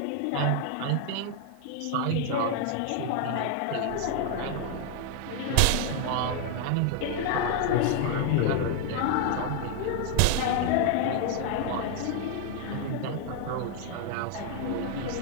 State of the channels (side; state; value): both; different; correlation 0.00